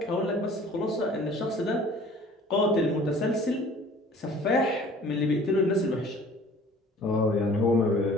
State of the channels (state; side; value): normal; both; correlation 0.49